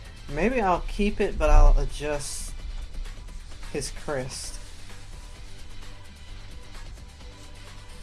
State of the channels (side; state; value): both; identical; correlation 1.00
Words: Maybe I'll keep it, but I'll adjust his crest.